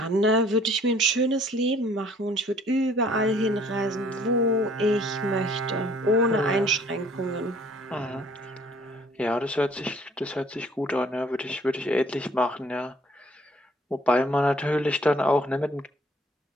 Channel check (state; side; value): normal; both; correlation 0.57